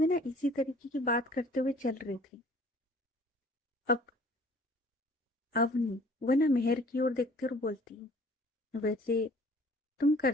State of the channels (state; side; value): normal; both; correlation 0.53